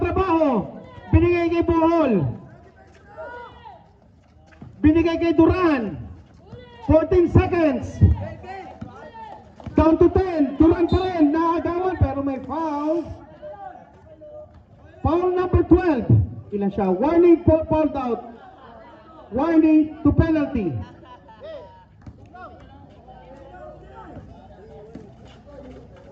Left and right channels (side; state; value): both; identical; correlation 1.00